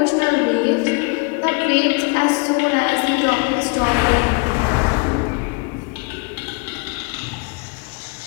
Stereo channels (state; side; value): quieter; right; 30.9 dB